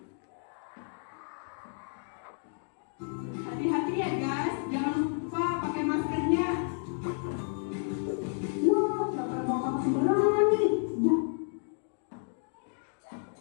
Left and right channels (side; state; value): right; silent; 57 dB below the other